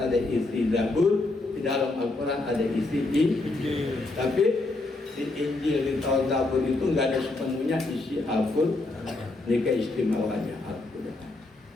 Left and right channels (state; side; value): quieter; right; 3.1 dB